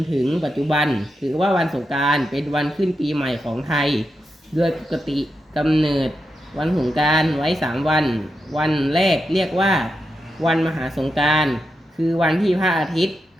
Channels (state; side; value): normal; both; correlation 0.86